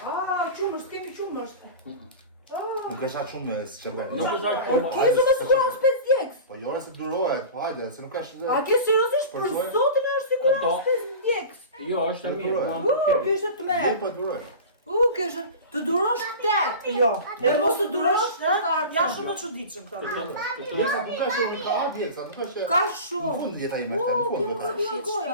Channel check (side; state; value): both; inverted; correlation -0.33